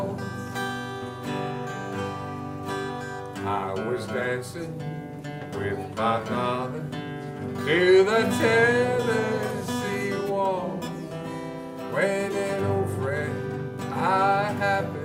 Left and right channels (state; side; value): identical; both; correlation 1.00